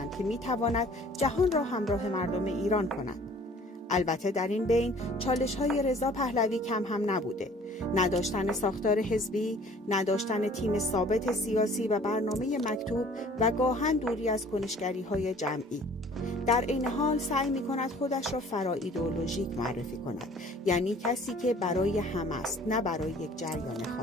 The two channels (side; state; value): both; normal; correlation 0.52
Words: که می‌تواند جهان را همراه مردم ایران کند. البته در این بین چالش‌های رضا پهلوی کم هم نبوده. نداشتن ساختار حزبی، نداشتن تیم ثابت سیاسی و برنامه مکتوب و گاهن دوری از کنشگری‌های جمعی. در این حال سعی می‌کند خودش را فرا ایدئولوژیک معرفی کند، یعنی کسی که برای همه است، نه برای یک جریان